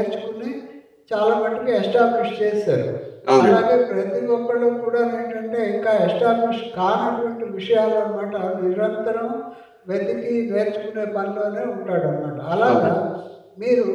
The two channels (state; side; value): identical; both; correlation 1.00